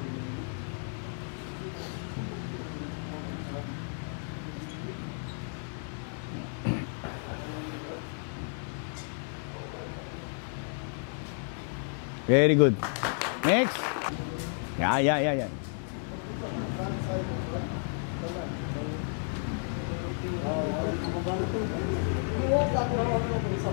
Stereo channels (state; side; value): silent; right; 57 dB below the other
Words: Very good. Next. Yeah.